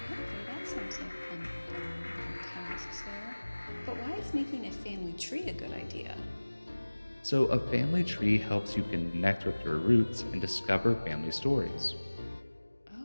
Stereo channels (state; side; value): inverted; both; correlation -1.00